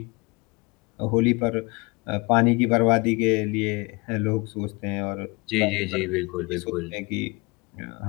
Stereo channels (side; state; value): right; quieter; 27.6 dB